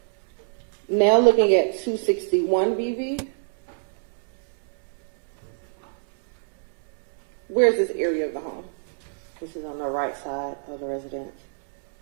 Now looking at 261 VV, where's this area of the home? This is on the right side of the residence.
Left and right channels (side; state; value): left; silent; 62 dB below the other